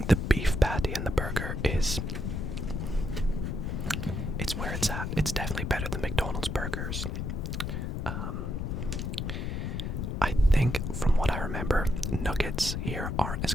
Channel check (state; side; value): noise; left; rumble, 2 dB below the sound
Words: the beef patty in the burger is... It's where it's at. It's definitely better than McDonald's burgers. I think, from what I remember, nuggets here aren't as